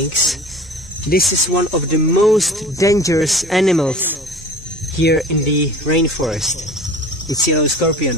this is one of the most dangerous animals here in the rainforest. It's yellow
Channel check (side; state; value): both; normal; correlation 0.41